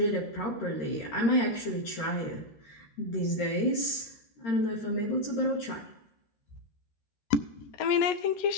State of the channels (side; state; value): right; late; 13 ms